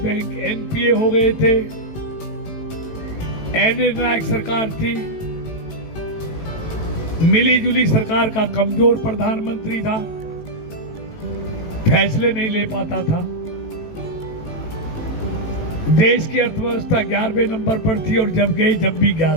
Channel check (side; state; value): right; late; 19 ms